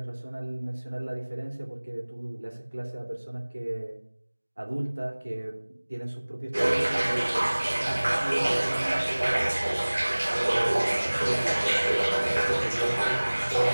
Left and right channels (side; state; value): both; inverted; correlation -1.00